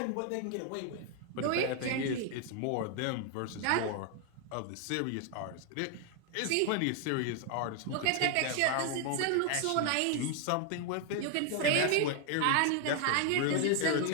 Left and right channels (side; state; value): both; different; correlation 0.01